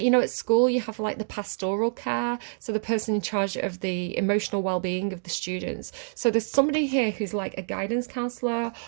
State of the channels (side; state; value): left; silent; digital silence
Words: you know, at school you have like the pastoral care, so the person in charge of the emotional well-being of the students. So there's somebody here who's like a guidance counselor,